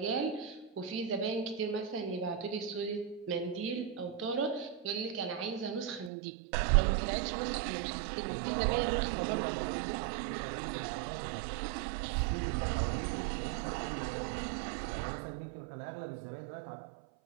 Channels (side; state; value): left; drops out; at 6.1 s